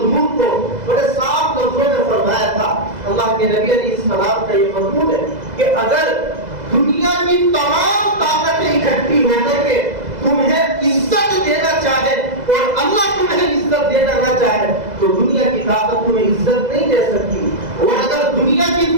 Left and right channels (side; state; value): left; late; 2.0 ms